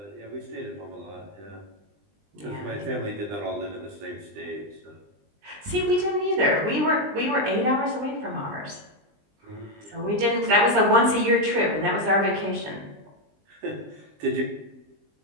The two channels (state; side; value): late; left; 20 ms